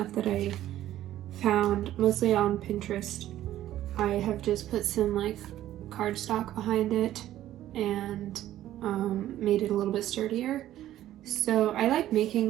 that I found mostly on Pinterest, I have just put some like cardstock behind it and made it a little bit sturdier. So I like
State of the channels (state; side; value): quieter; left; 13.1 dB